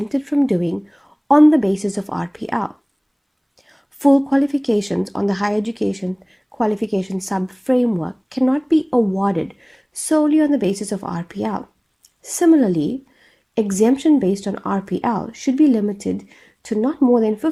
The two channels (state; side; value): identical; both; correlation 1.00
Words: from doing on the basis of RPL. Full qualifications on the higher education qualification sub-framework cannot be awarded solely on the basis of RPL. Similarly, exemption based on RPL should be limited to not more than